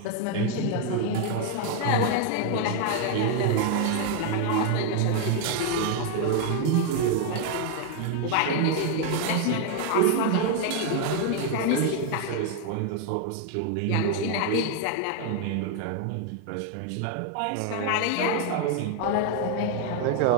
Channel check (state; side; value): different; both; correlation 0.00